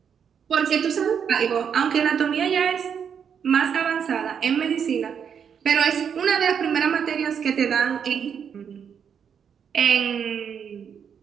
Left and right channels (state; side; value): quieter; left; 7.5 dB